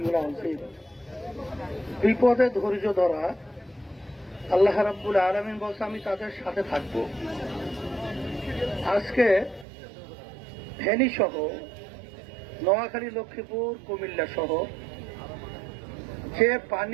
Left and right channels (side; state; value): left; drops out; at 9.7 s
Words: আযীম। বিপদে ধৈর্য ধরা, আল্লাহ রাব্বুল আলামিন বলছে আমি তাদের সাথে থাকব। আজকে ফেনী সহ নোয়াখালী, লক্ষ্মীপুর, কুমিল্লা সহ যে